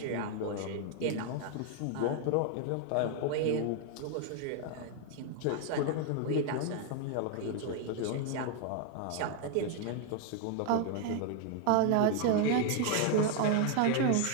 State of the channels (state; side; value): different; both; correlation 0.01